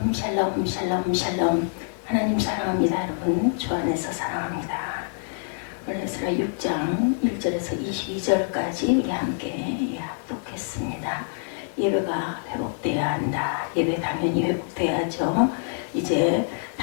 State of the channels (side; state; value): right; silent; 57 dB below the other